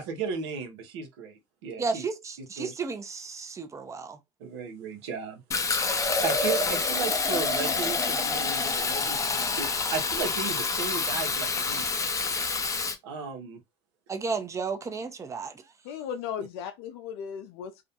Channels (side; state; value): both; normal; correlation 0.11